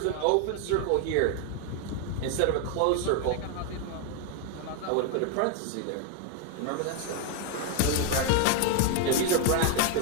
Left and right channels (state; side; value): different; both; correlation 0.01